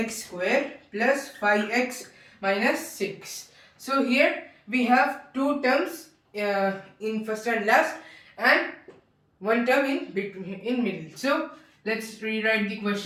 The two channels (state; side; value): identical; both; correlation 1.00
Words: square plus 5x minus 6. So, here we have two terms in first and last and one term in between in middle. So let's rewrite the